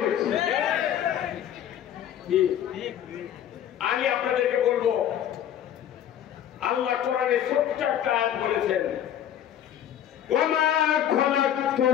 বেশি? আমি আপনাদেরকে বলবো, আল্লাহ কোরআনে ছোট্ট একটা আয়াত বলেছেন, ওয়ামা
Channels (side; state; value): right; quieter; 10.4 dB